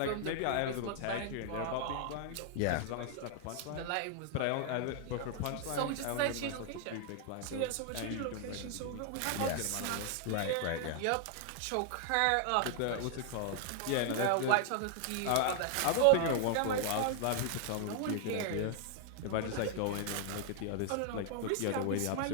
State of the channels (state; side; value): different; both; correlation 0.00